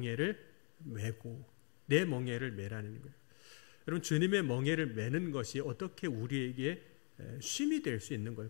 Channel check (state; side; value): quieter; right; 39.8 dB